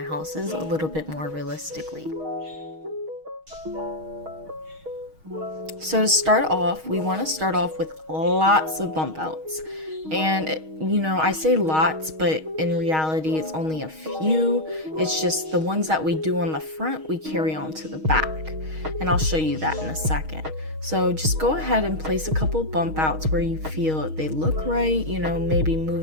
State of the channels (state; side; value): late; left; 6.4 ms